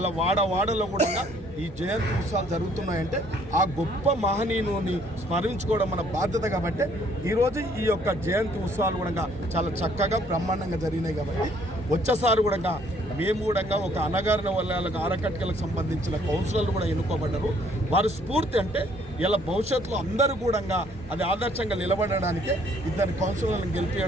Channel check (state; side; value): normal; both; correlation 0.62